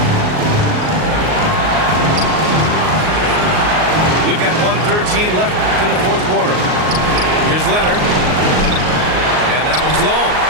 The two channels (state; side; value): late; left; 38 ms